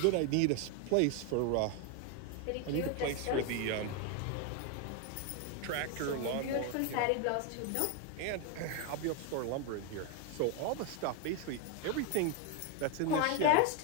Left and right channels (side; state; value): both; different; correlation 0.01